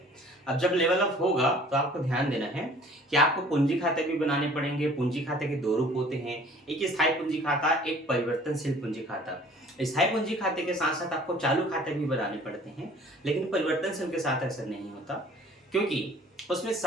अब जब लेवल अप होगा तो आपको ध्यान देना है कि आपको पूंजी खाते भी बनाने पड़ेंगे। पूंजी खाते के दो रूप होते हैं, एक स्थायी पूंजी खाता, एक परिवर्तनशील पूंजी खाता। स्थायी पूंजी खाते के साथ साथ आपको चालू खाते भी बनाने पड़ते हैं, लेकिन परिवर्तनशील के साथ ऐसा नहीं होता, क्योंकि उसमें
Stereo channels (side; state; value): both; normal; correlation 0.51